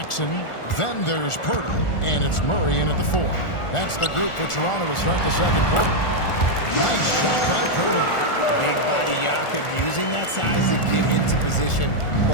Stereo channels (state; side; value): late; right; 1.4 ms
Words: Then there's Poeltl. And it's Murray in at the 4. That's the group for Toronto to start the second quarter. Nice shot by Poeltl. Big body Jakob using that size to get into position.